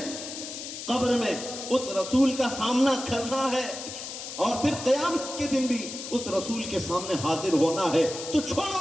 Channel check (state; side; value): noise; left; hiss, 9 dB below the sound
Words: قبر میں اس رسول کا سامنا کرنا ہے اور پھر قیامت کے دن بھی اس رسول کے سامنے حاضر ہونا ہے، تو چھوڑو